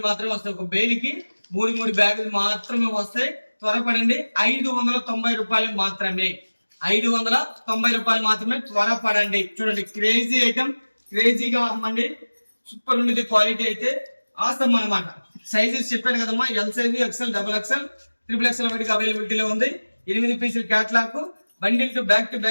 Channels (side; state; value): both; inverted; correlation -1.00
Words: మాత్రమే వస్తాయి. ఒక బేలికి 3 బ్యాగులు మాత్రమే వస్తాయి. త్వరపడండి. 590 రూపాయలు మాత్రమే. 590 రూపాయలు మాత్రమే. త్వరపడండి. చూడండి క్రేజీ ఐటమ్. క్రేజీగా అమ్మండి. సూపర్ ఉండేది క్వాలిటీ అయితే ఆసమ్ అనమాట. సైజెస్ చెప్పాను కదమ్మా. L size, XL, XXL, 3XL వాటికి అవైలబిలిటీలో ఉంది. 8 పీసులు క్యాట్లాగ్. బండిల్ టు బ్యాక్